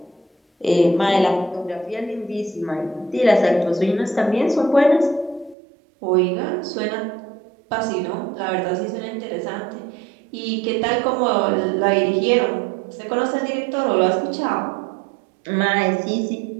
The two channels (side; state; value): left; drops out; at 5.6 s